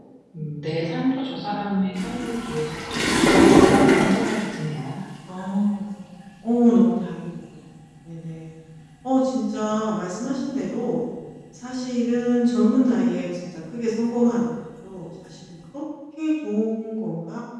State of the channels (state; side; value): identical; both; correlation 1.00